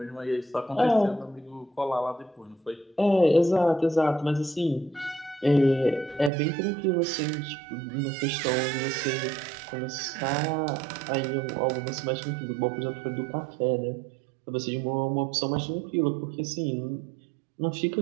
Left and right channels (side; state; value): left; drops out; at 6.3 s